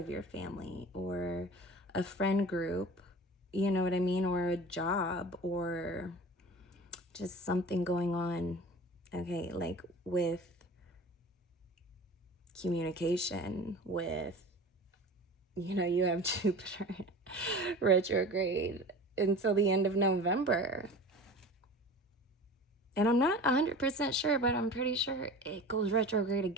your family or a friend group, you know what I mean, or a job, or just something going on, okay, like with communication, with, you know, you have Jupiter retrograde until the end of November. And I'm not 100% sure, but I'm pretty sure it goes retrograde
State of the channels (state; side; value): normal; both; correlation 0.37